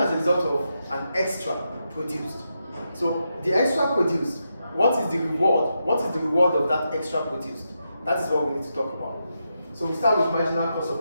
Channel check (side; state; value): both; inverted; correlation -0.85